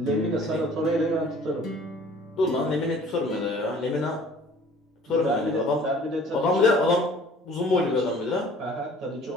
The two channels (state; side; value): normal; both; correlation 0.51